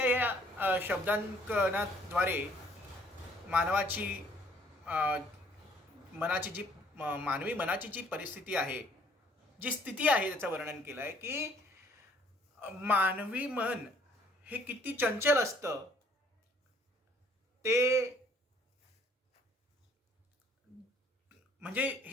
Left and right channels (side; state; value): both; normal; correlation 0.61